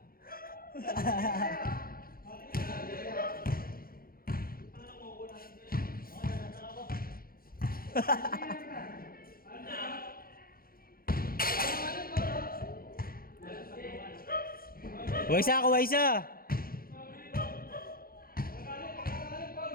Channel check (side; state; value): right; late; 0.43 ms